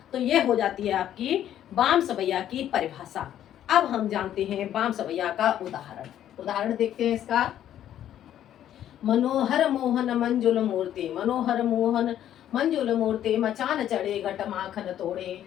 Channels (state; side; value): quieter; right; 11.1 dB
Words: तो ये हो जाती है आपकी बाम सवैया की परिभाषा। अब हम जानते हैं बाम सवैया का उदाहरण। उदाहरण देखते हैं इसका। मनोहर मोहन मंजुल मूर्ति, मनोहर मोहन मंजुल मूर्ति, मचान चढ़े घट माखन तोड़े,